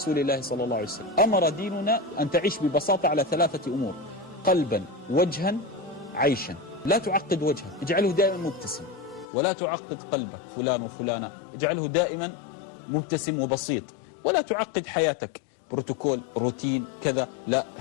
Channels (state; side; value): drops out; right; at 9.2 s